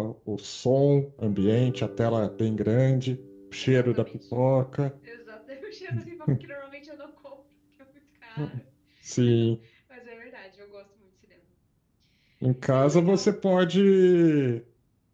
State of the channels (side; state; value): both; identical; correlation 1.00